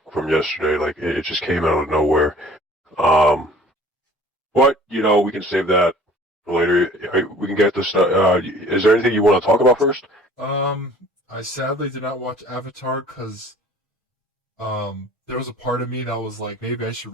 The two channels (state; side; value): normal; both; correlation 0.50